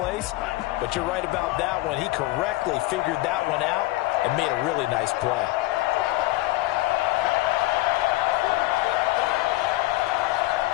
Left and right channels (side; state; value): right; quieter; 18.6 dB